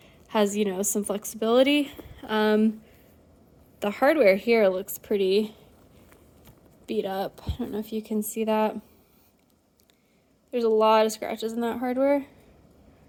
has, some flexibility. The hardware here looks pretty beat up. I don't know if you can see that. There's a lot of scratches in that hardware.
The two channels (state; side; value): identical; both; correlation 1.00